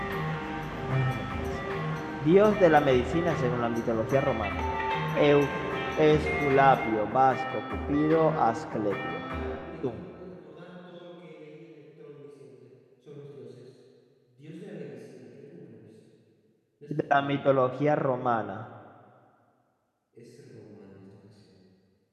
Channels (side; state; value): both; identical; correlation 1.00